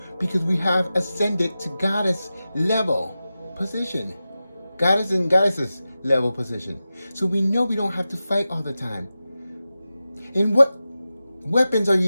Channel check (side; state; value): both; inverted; correlation -0.94